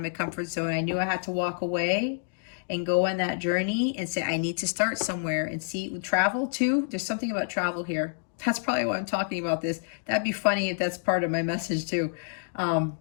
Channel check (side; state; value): right; silent; digital silence